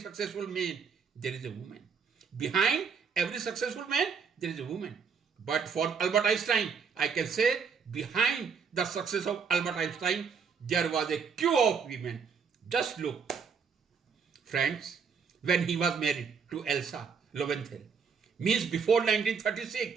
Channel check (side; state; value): left; quieter; 6.0 dB